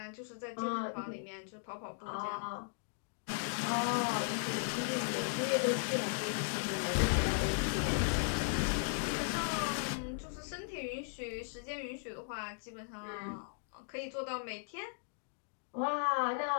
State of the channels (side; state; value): right; silent; digital silence